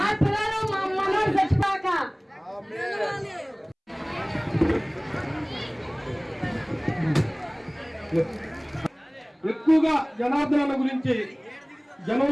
పిల్లలు, మా మనోడు చచ్చిపోక. ఎక్కువగా జనార్దన్ అన్న గురించి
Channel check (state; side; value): identical; both; correlation 1.00